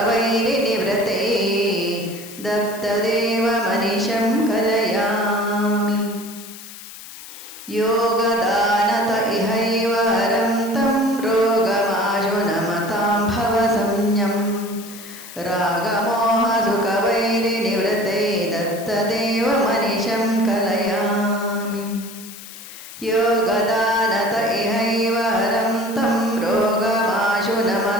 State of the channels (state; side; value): noise; left; hiss, 15 dB below the sound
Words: दत्तदेवमनिशं कलयामि योगदानत इहैव हरं तं रोगमाशु नमतां भवसंज्ञं रागमोहसुखवैरिनिवृत्तै दत्तदेवमनिशं कलयामि योगदानत इहैव हरं तं रोगमाशु